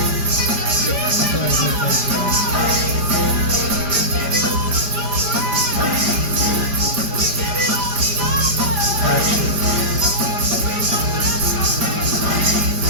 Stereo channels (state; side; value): late; left; 5.0 ms